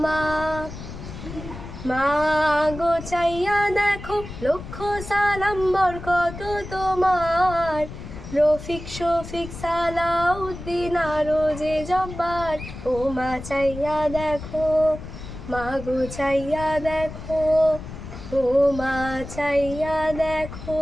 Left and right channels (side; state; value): left; noise; rumble, 11 dB below the sound